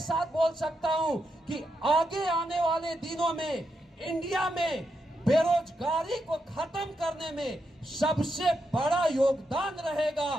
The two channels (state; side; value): normal; both; correlation 0.84